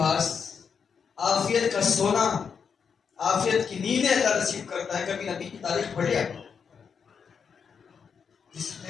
عافیت کا سونا، عافیت کی نیندیں اللہ نصیب کرتا ہے۔ کبھی نبی کی تاریخ پڑھیا، جس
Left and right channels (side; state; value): right; quieter; 6.4 dB